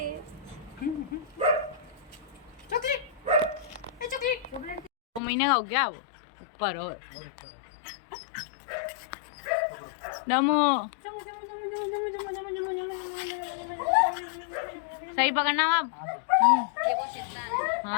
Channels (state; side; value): drops out; right; at 5.2 s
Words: चॉकलेट, 2 महीने का हो गया वो ऊपर। और दमू सही पकड़ना आप। ये वो चित्ता है।